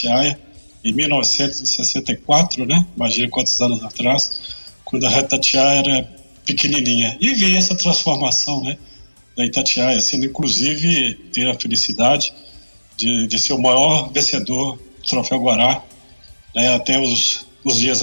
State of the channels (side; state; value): both; inverted; correlation -1.00